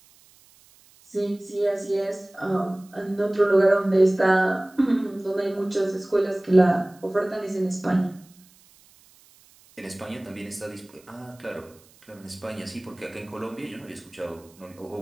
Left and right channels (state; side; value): noise; right; hiss, 28 dB below the sound